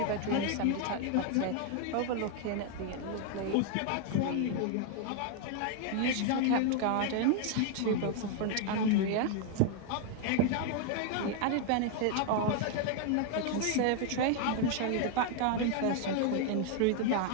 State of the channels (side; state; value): both; different; correlation 0.00